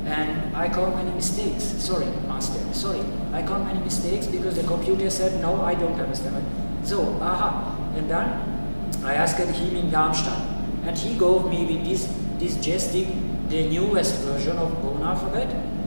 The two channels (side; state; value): both; inverted; correlation -1.00